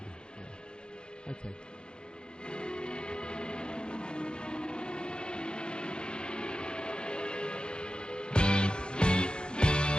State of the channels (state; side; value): late; right; 0.049 ms